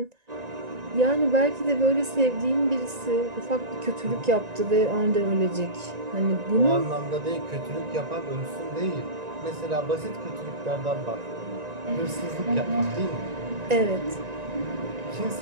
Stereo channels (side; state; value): left; late; 1.9 ms